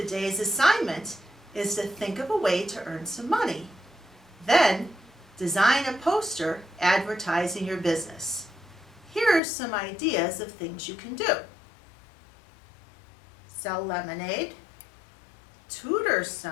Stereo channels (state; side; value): drops out; right; at 9.4 s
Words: assignment is to think of a way to earn some money. Then, design a poster advertising your business. Here are some ideas of things you can do. Sell lemonade, tutor